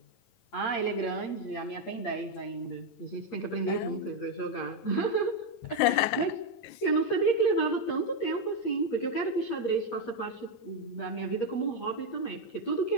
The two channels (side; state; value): right; late; 9.7 ms